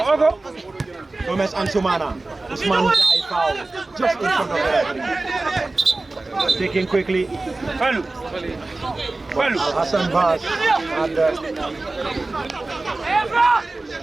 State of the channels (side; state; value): left; quieter; 3.2 dB